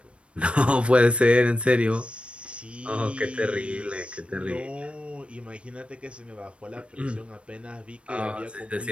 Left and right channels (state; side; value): late; left; 0.059 ms